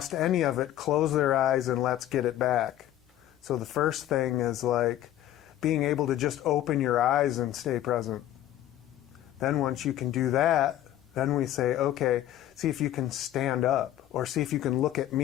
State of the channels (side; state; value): right; quieter; 12.8 dB